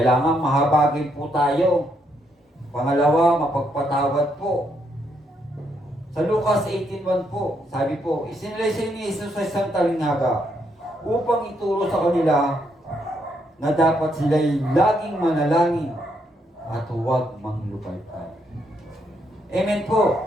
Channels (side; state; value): both; normal; correlation 0.76